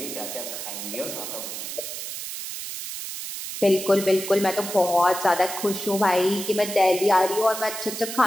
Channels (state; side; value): noise; right; hiss, 7 dB below the sound